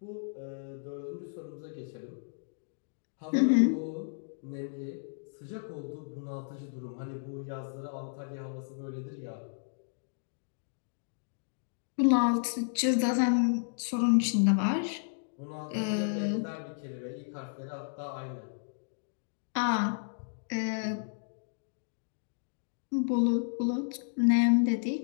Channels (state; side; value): silent; right; digital silence